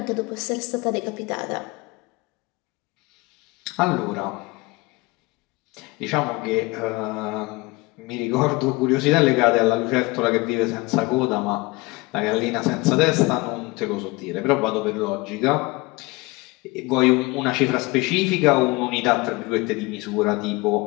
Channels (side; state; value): right; quieter; 24.0 dB